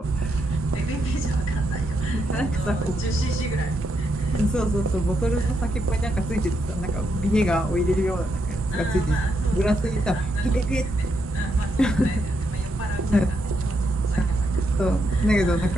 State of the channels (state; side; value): normal; both; correlation 0.80